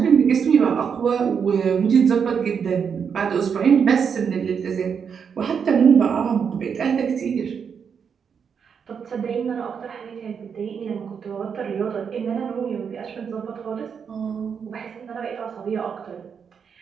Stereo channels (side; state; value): left; quieter; 6.8 dB